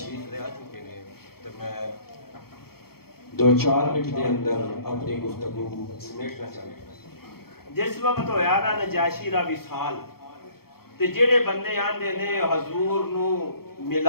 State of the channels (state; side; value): late; right; 0.94 ms